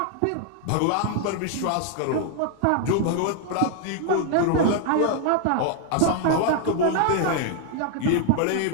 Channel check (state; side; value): different; both; correlation 0.00